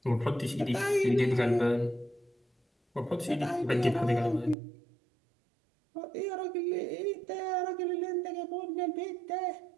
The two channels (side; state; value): left; drops out; at 4.5 s